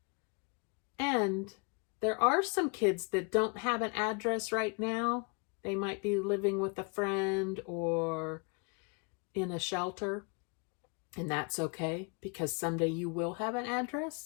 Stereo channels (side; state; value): right; quieter; 33.8 dB